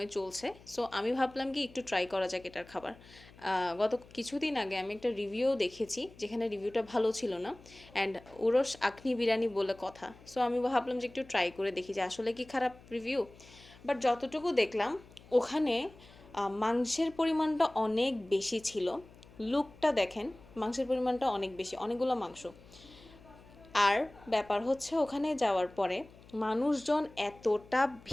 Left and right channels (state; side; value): noise; left; hum, 23 dB below the sound